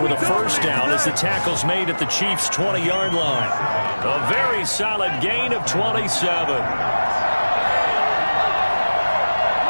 with a first down as the tackle's made at the Chiefs' 20-yard line. A very solid gain of 27.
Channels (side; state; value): both; inverted; correlation -1.00